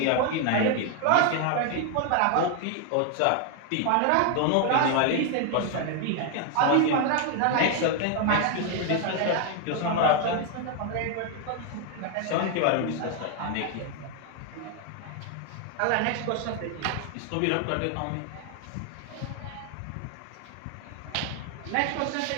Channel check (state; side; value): different; both; correlation 0.00